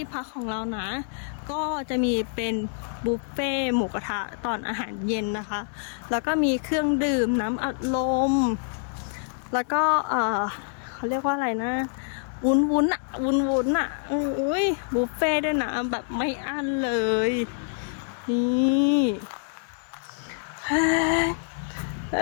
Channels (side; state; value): right; silent; digital silence